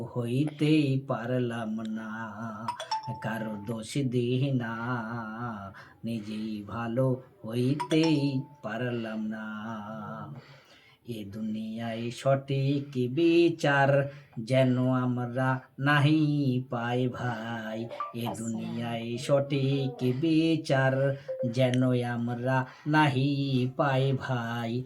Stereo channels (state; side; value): identical; both; correlation 1.00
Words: হইতেই পারলাম না, কারো দোষ দিই না। নিজেই ভালো হইতেই পারলাম না। এ দুনিয়ায় সঠিক বিচার যেন আমরা নাহি পাই ভাই। এ দুনিয়ায় সঠিক বিচার যেন আমরা নাহি পাই ভাই।